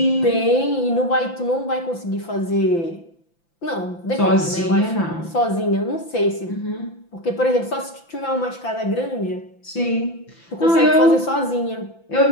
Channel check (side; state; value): right; late; 5.9 ms